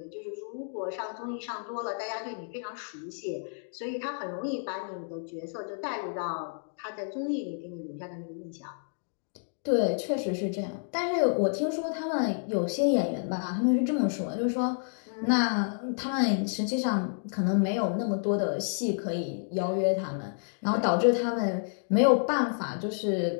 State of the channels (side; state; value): right; silent; digital silence